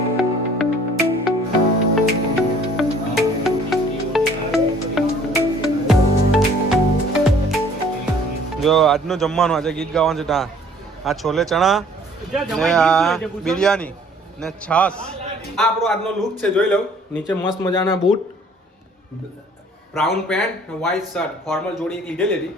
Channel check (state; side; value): normal; both; correlation 0.55